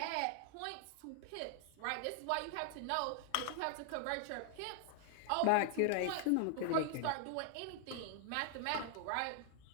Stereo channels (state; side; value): different; both; correlation 0.00